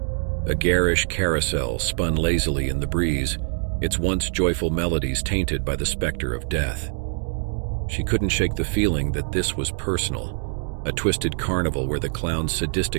A garish carousel spun lazily in the breeze, its once joyful melodies tainted by the specter of death. She couldn't shake the feeling that this was personal, a twisted carnival where the clown's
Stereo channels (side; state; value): left; silent; 63 dB below the other